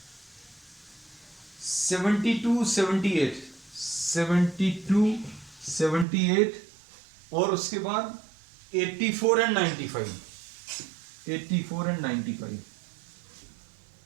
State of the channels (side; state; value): left; drops out; at 6.1 s